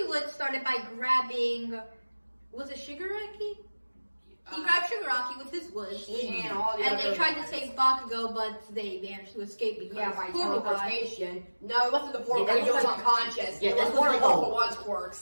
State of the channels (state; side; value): inverted; both; correlation -1.00